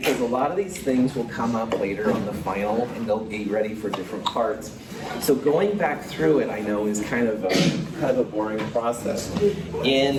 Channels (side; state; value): both; identical; correlation 1.00